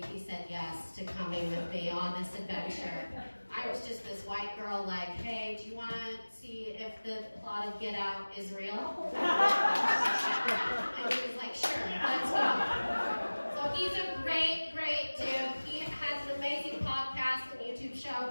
he said yes to coming with me on this adventure. I was just this white girl like, hey, do you want to see if the plot of Get Out is real? And he was like, sure, let's go. So he's a great, great dude. He has an amazing podcast and YouTube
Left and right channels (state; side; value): inverted; both; correlation -1.00